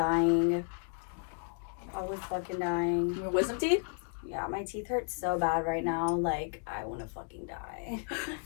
I was fucking dying. Your wisdom teeth? Yeah, my teeth hurt so bad right now. Like, I want to fucking die.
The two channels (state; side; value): silent; right; 56 dB below the other